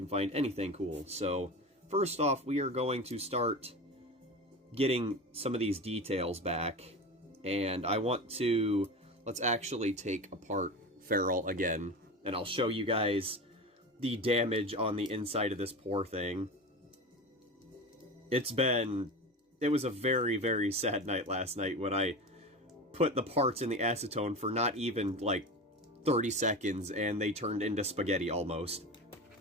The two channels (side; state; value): both; normal; correlation 0.28